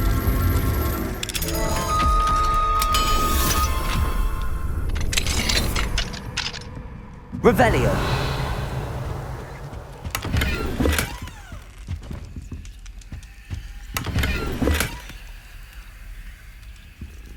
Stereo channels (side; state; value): both; identical; correlation 1.00